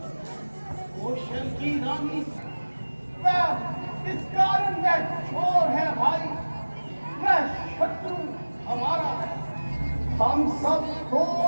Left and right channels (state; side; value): inverted; both; correlation -1.00